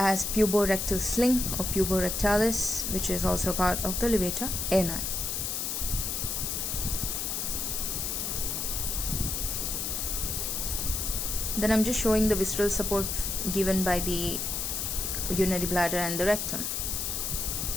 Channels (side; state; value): left; noise; hiss, 1 dB below the sound